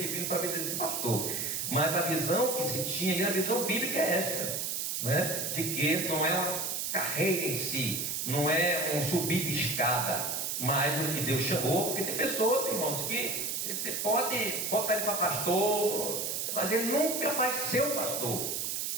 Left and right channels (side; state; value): right; noise; hiss, 1 dB below the sound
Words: para ver esse pastor. Mas a visão que se tinha, e a visão bíblica é esta, né? De que não é uma carreira em si, não é um subir de escada, mas o que Deus chamou, porque tem pessoas, irmãos, que você pode botar ele para pastor, mas ele nunca vai ser um pastor.